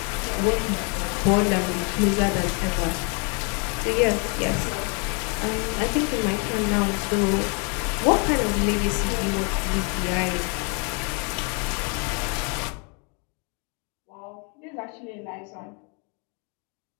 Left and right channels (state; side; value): quieter; right; 35.7 dB